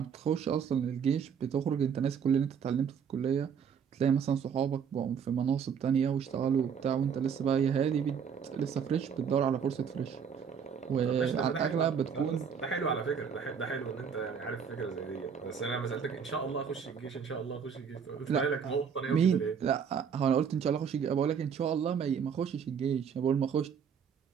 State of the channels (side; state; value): left; quieter; 7.1 dB